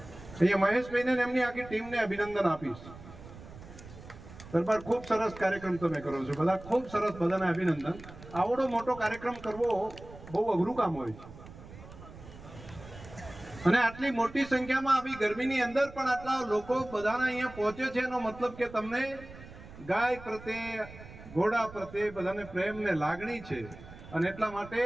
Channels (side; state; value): right; noise; rumble, 16 dB below the sound